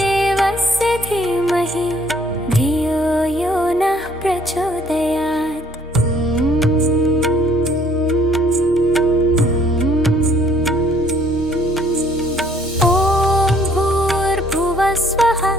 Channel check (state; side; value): normal; both; correlation 0.61